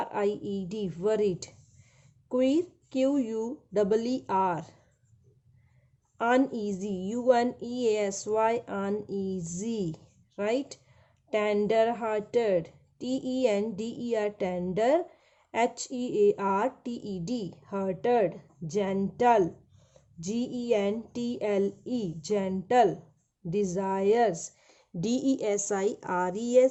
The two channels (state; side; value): identical; both; correlation 1.00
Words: worried. Queer, QUEER. Uneasy, UNEASY, uneasy, right? Tender hearted, TENDER, tender, HEARTED, hearted. Gentle, GENTLE, gentle. Desires,